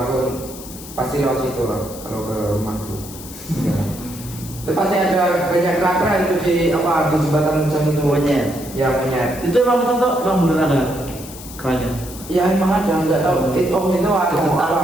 pasti lewat situ lah kalau ke rumahku. Ya. Itu pasti ada banyak keranda itu di apa di jembatan Mujang itu. Monyet. Ya monyet. Itu emang betul tuh emang beneran ada kerannya? Ya emang ada, nggak tahu. Itu ada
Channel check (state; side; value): noise; left; hiss, 15 dB below the sound